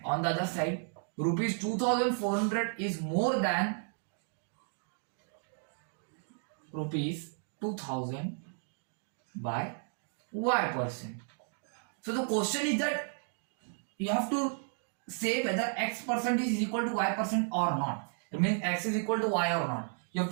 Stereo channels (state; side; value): silent; left; 55 dB below the other